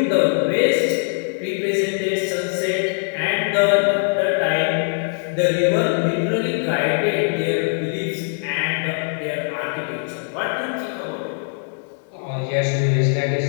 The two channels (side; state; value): right; silent; 63 dB below the other